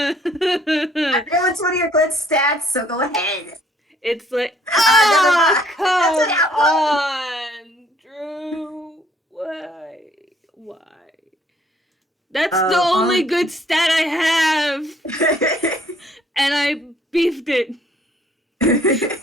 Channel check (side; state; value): both; normal; correlation 0.61